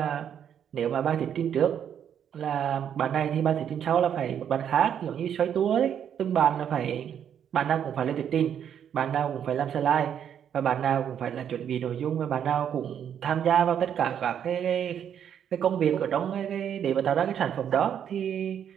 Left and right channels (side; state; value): left; quieter; 8.9 dB